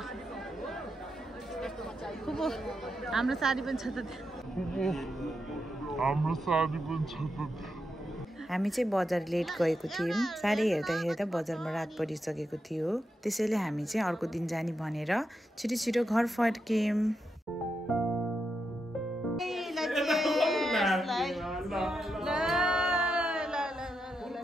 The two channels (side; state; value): both; normal; correlation 0.85